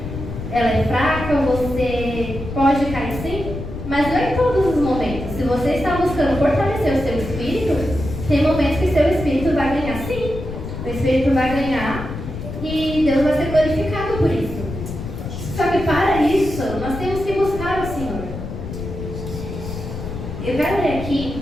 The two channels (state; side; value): noise; left; rumble, 8 dB below the sound